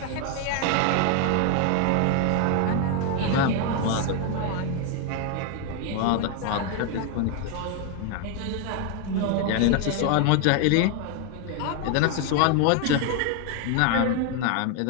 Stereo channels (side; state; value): both; different; correlation 0.01